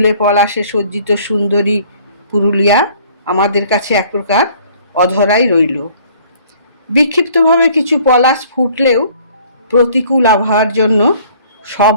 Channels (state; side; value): inverted; both; correlation -0.56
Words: পলাশে সজ্জিত সুন্দরী পুরুলিয়া আমাদের কাছে এক প্রকার অধরাই রইল। বিক্ষিপ্তভাবে কিছু পলাশ ফুটলেও প্রতিকূল আবহাওয়ার জন্য সব